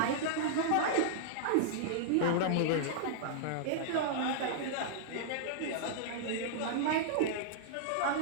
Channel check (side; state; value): both; different; correlation -0.02